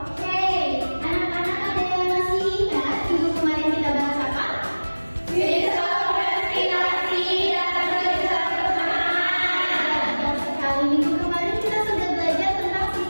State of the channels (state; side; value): inverted; both; correlation -1.00